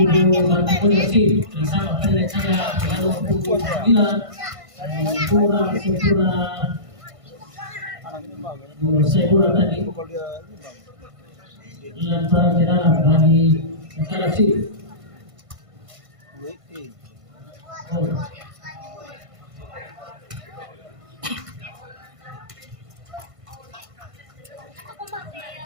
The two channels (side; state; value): left; late; 1.5 ms